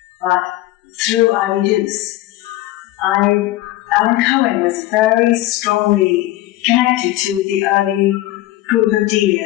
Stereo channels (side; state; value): right; quieter; 16.2 dB